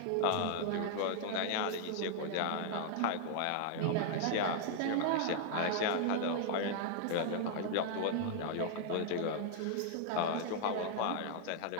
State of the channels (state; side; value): different; both; correlation 0.00